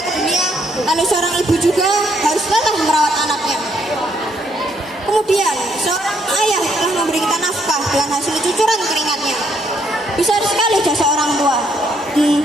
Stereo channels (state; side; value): normal; both; correlation 0.71